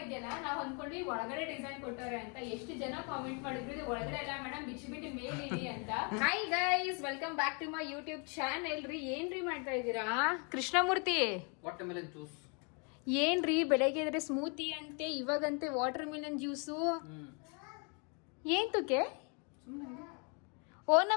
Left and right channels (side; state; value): right; quieter; 36.0 dB